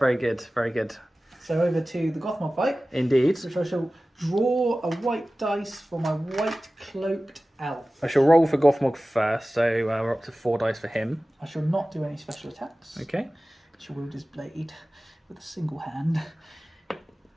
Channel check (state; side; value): normal; both; correlation 0.96